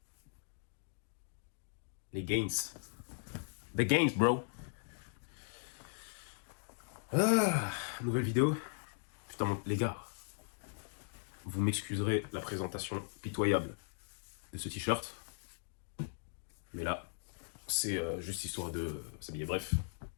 Les gains. The gains, bro. Ah, nouvelle vidéo. Putain, les gars. Vous m'excuserez la présentation pitoyable de ce t-shirt. Mais là, c'est juste histoire de s'habiller. Bref.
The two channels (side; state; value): right; silent; digital silence